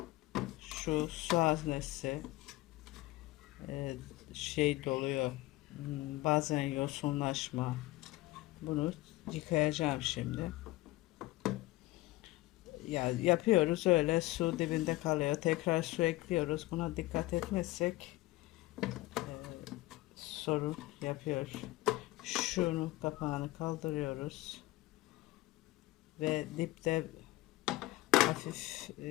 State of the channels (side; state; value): right; quieter; 18.9 dB